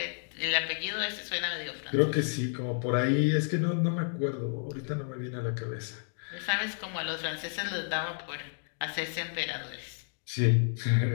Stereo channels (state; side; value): silent; right; 56 dB below the other